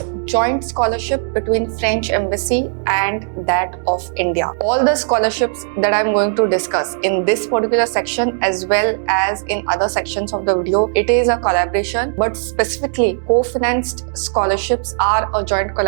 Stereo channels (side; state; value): left; silent; 68 dB below the other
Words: joint scholarship between French Embassy and that of India. All the scholarships that I'm going to discuss in this particular section as well as in other sections of the video, it is a collaboration, but specifically co-financed scholarships are a joint